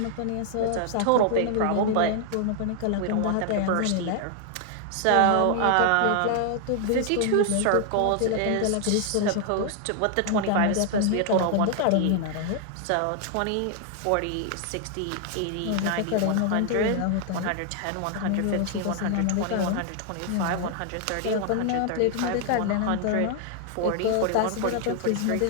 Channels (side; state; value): both; different; correlation 0.00